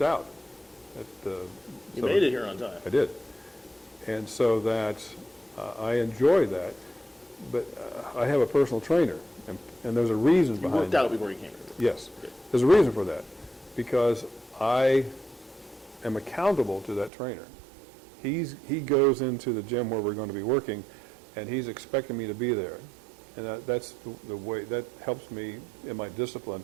out. You made it here on time. I did. And so that I enjoy that, but I have a personal trainer, and there's a reason behind it. You worked out before you came here? Yes. Good. There's a reason for that, because I am accountable to that trainer. He goes into the gym where we're going to be working, and he's expecting me to be there. And that's the way, that helps me in my discipline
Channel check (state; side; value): drops out; left; at 17.1 s